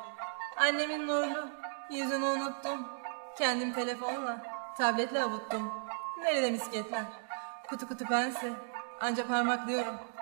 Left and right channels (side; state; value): left; silent; digital silence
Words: Annemin nurlu yüzünü unuttum. Kendim telefonla, tabletle avuttum. Nerede misketler? Kutu kutu pense, anca parmaklıyorum.